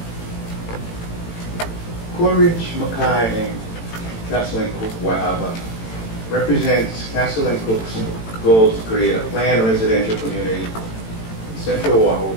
Coa Ridge, Makai, and Castle and Cook, Waiawa represents Castle and Cook's goal to create a planned residential community in Central Oahu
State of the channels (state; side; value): late; right; 18 ms